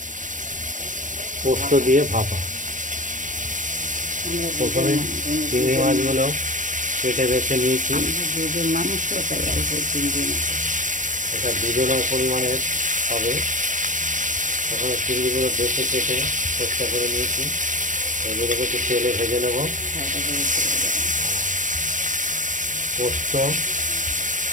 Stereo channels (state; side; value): late; left; 0.37 ms